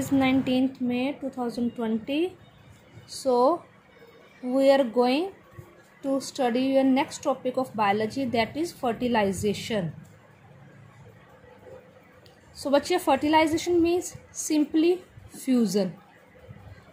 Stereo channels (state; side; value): identical; both; correlation 1.00